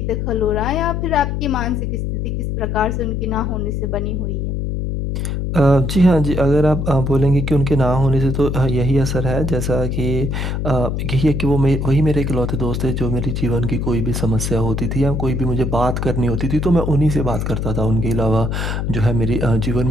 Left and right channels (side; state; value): left; noise; hum, 1 dB below the sound